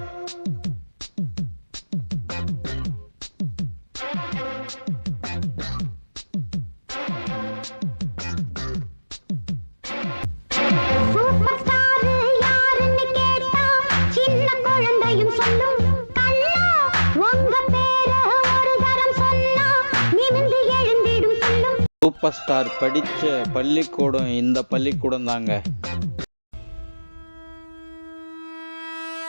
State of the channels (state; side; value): inverted; both; correlation -1.00